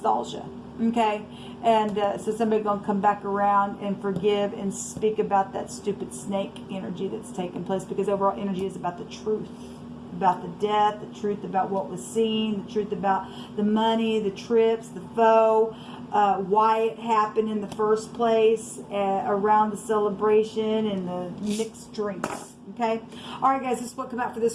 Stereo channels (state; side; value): identical; both; correlation 1.00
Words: Okay, and so somebody going to come back around and forgive and speak about that stupid snake energy that's taking place, because overall energy is about the truth, about the death, the truth about what was seen, the truth about the money, the trips, the foe, why it happened in the first place, around the celebration and the mixed drinks. Okay, all right, guys, this is what come out for